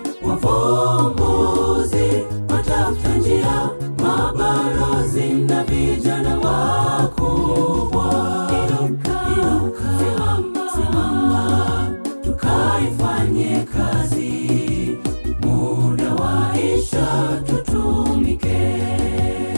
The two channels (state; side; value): inverted; both; correlation -1.00